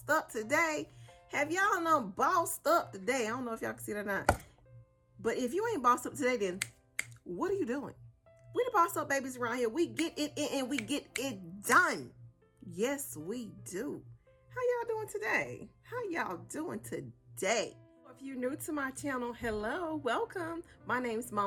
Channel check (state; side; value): identical; both; correlation 1.00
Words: up today? Have y'all done bossed up today? I don't know if y'all can see that or not. But if you ain't bossed up today, then what are you doing? We the boss up babies around here. We get it in and we get it done. Yes, we do. How y'all doing today? How y'all doing today? If you're new to my channel, hello, welcome. My name is